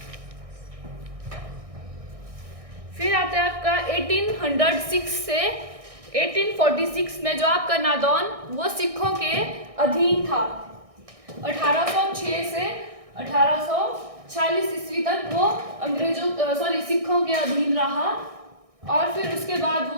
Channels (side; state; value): left; late; 1.6 ms